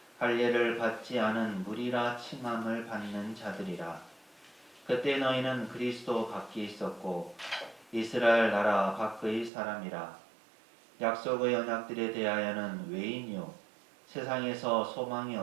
할례를 받지 않은 무리라 칭함을 받는 자들이라. 그때 너희는 그리스도 밖에 있었고 이스라엘 나라 밖의 사람이라. 약속의 언약들에 대하여는 외인이요 세상에서 소망이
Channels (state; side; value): drops out; left; at 9.5 s